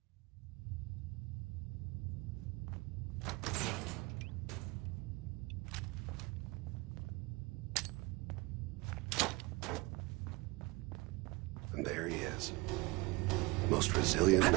And there he is. Most resilient man.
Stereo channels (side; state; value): left; quieter; 24.2 dB